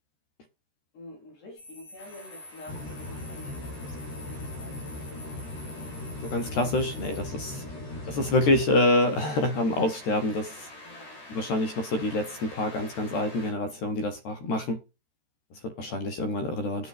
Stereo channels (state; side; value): late; right; 13 ms